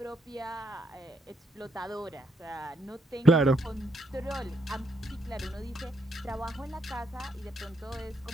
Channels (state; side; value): normal; both; correlation 0.76